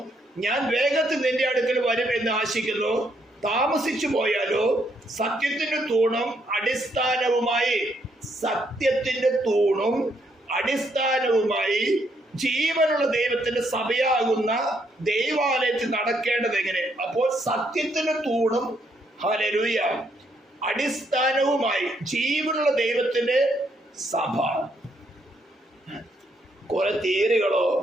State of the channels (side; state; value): both; normal; correlation 0.74